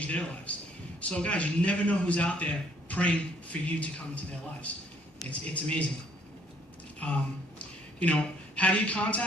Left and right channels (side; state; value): both; normal; correlation 0.64